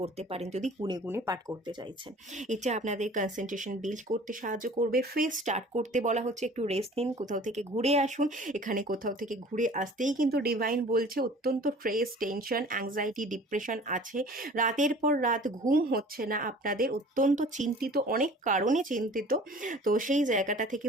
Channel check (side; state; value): both; normal; correlation 0.46